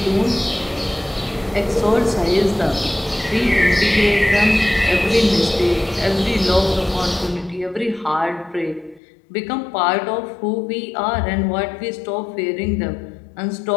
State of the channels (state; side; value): drops out; right; at 9.0 s